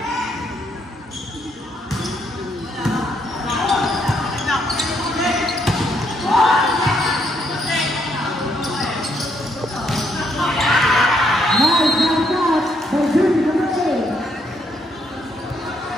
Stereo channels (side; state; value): both; normal; correlation 0.74